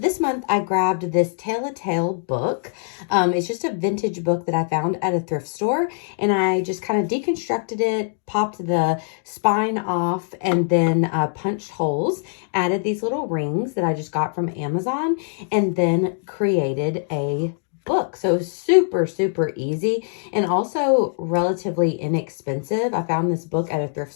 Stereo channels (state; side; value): silent; right; digital silence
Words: month I grabbed this Tale a Tale book. It's just a vintage book that I found at a thrift store, and I just kind of deconstructed it, popped the spine off, and then punched holes, added these little rings that I just got from Amazon, and then created a book. So super, super easy and also relatively inexpensive. I found this book at a thrift